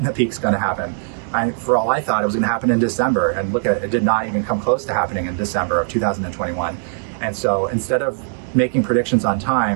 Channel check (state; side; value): silent; left; digital silence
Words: the peak's going to happen. For all I thought, it was going to happen in December, and look at it, it did not even come close to happening in December of 2021. And so instead of making predictions on